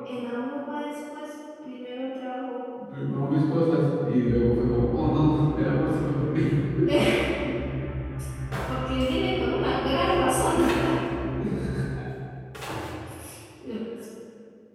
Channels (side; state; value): both; identical; correlation 1.00